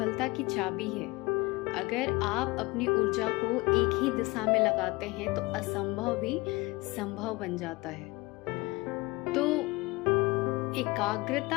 की चाबी है। अगर आप अपनी ऊर्जा को एक ही दिशा में लगाते हैं तो असंभव भी संभव बन जाता है। तो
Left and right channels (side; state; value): right; quieter; 22.7 dB